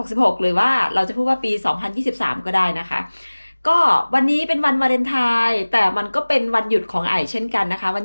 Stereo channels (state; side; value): inverted; both; correlation -1.00